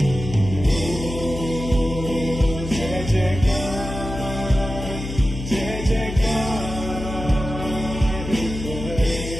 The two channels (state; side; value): noise; left; hum, 8 dB below the sound